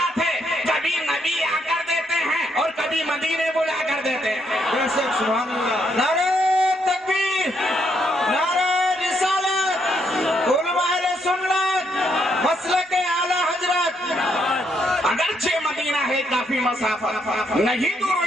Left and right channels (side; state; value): both; normal; correlation 0.75